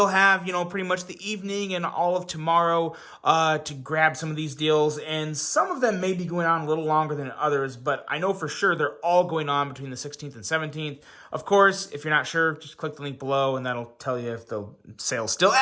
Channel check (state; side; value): identical; both; correlation 1.00